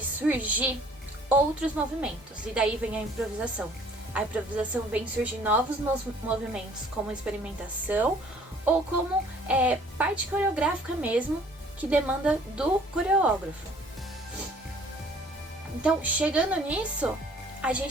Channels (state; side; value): normal; both; correlation 0.55